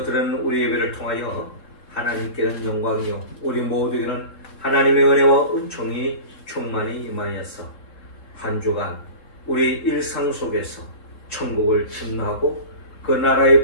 드리는 우리 예배를 통하여 하나님께는 영광이요 우리 모두에게는 하나님의 은혜와 은총이 충만히 임하여서 한 주간 우리 일상 속에서 천국을 침노하고 그 나라의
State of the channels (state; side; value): late; right; 3.7 ms